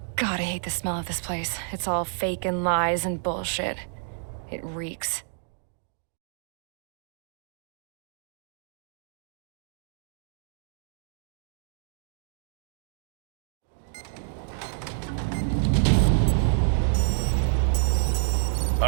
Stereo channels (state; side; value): silent; left; digital silence